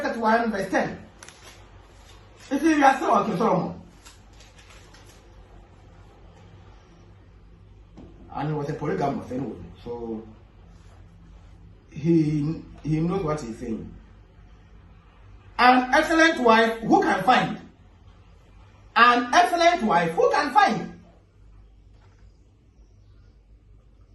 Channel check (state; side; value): identical; both; correlation 1.00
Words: 31 verse 10. You see, we are still on King Solomon. And he was a polygamous anyway. So he knows what he's saying. An excellent wife who can find? An excellent wife who can find?